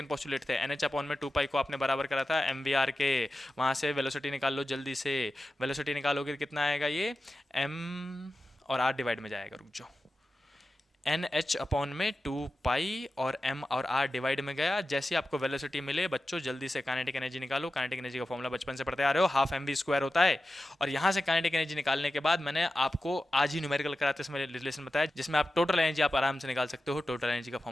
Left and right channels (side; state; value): both; normal; correlation 0.93